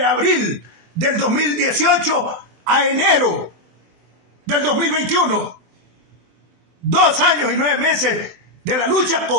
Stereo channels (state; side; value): late; left; 23 ms